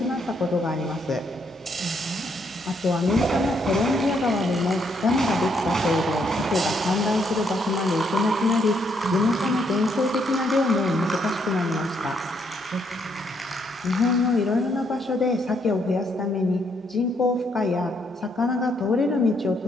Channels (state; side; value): normal; both; correlation 0.73